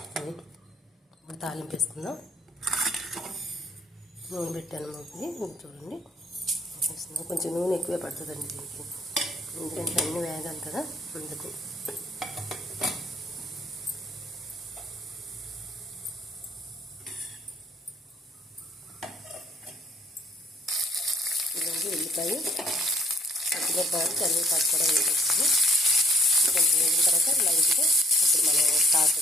తాలింపు వేసుకుందాం. నూనె పెట్టాను మూకి, చూడండి. కొంచెం నూనె ఎక్కువే పడుతుందండి దీనికి, ఎందుకంటే అన్ని వేగాలి కదా, అందుకు. ఇదండి ఉల్లిపాయ, పచ్చిమిరపకాయలు, కరివేపాకు కూడా వేసేస్తాము. కొంచెం వేగిన తర్వాత లైట్గా ఇప్పుడు మనం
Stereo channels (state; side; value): normal; both; correlation 0.61